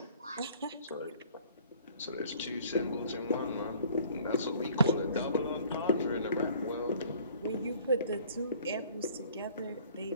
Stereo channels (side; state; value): both; inverted; correlation -0.55